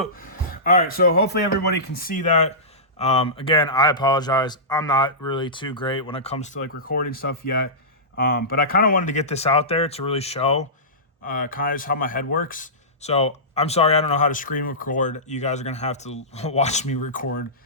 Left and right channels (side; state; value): both; normal; correlation -0.19